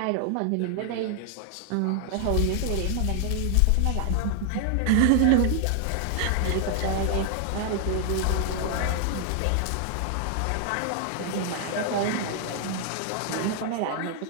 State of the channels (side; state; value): both; different; correlation 0.00